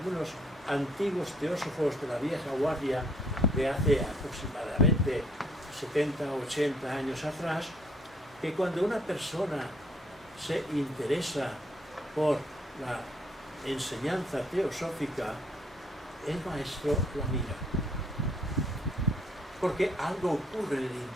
antiguos teósofos de la vieja guardia de hace aproximadamente 70 o 80 años atrás, que cuando una persona se interesa por la enseñanza teosófica, el maestro la mira. Porque algo ocurre en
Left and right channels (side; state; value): both; normal; correlation 0.65